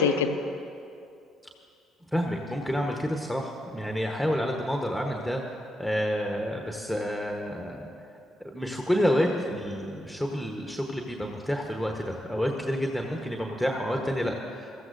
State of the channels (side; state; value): both; normal; correlation 0.81